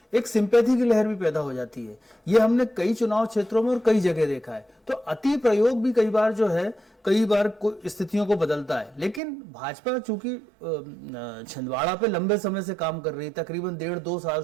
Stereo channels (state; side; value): drops out; left; at 9.2 s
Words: एक सिंपैथी की लहर भी पैदा हो जाती है। ये हमने कई चुनाव क्षेत्रों में और कई जगह देखा है। तो अति प्रयोग भी कई बार जो है कई बार स्थितियों को बदलता है। लेकिन भाजपा चूंकि छिंदवाड़ा पे लंबे समय से काम कर रही है, तकरीबन 1.5-2 साल